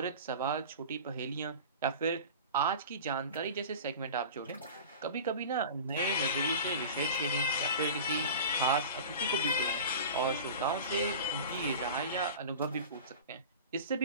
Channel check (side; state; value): both; inverted; correlation -0.35